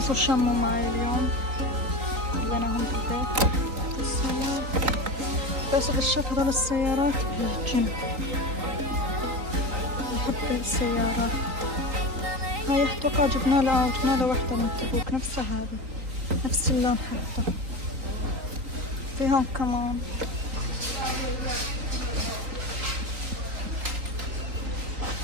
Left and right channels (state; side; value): late; left; 3.9 ms